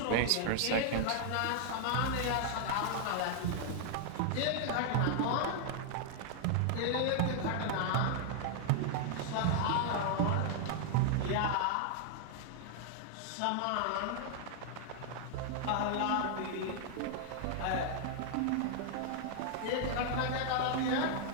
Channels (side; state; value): both; different; correlation 0.00